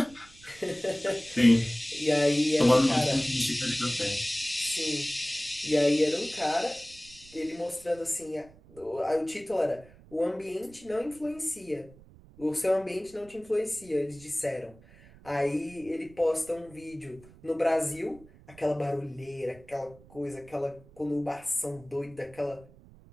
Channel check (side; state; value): right; noise; rumble, 23 dB below the sound